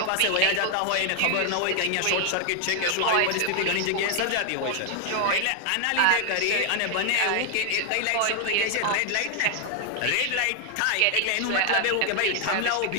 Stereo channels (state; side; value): different; both; correlation 0.00